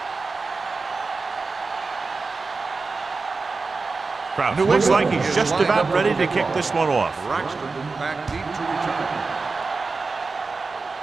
Kraus looks like he's just about ready to kick this one off. Braxton back deep to return.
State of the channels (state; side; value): quieter; left; 4.1 dB